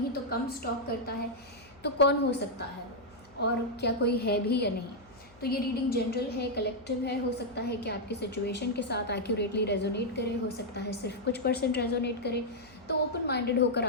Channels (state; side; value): noise; left; hum, 26 dB below the sound